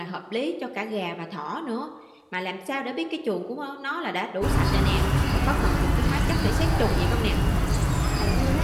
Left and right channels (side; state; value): both; identical; correlation 1.00